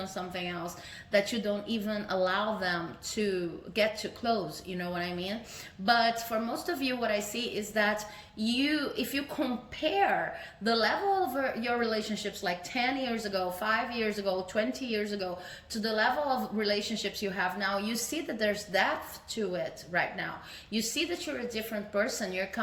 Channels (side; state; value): both; identical; correlation 1.00